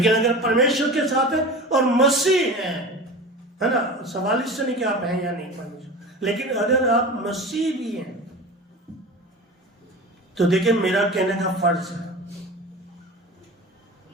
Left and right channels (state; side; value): normal; both; correlation 0.33